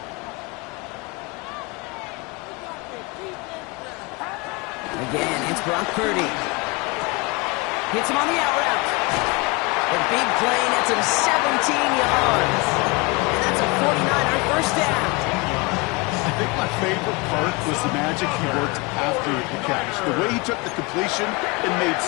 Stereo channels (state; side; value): quieter; right; 26.8 dB